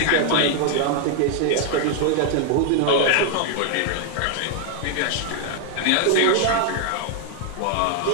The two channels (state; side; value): different; both; correlation 0.01